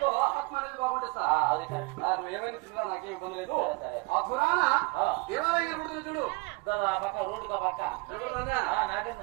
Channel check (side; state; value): left; quieter; 26.9 dB